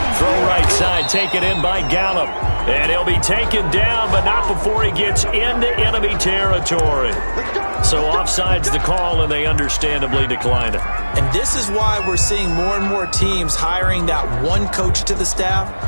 Throw right side, taken in by Gallup. And he'll be taken down, but not before he gets into enemy territory. So offside's the call, and they understandably decline it. And this is why we're seeing more and more teams hiring that one coach to the staff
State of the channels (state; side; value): inverted; both; correlation -1.00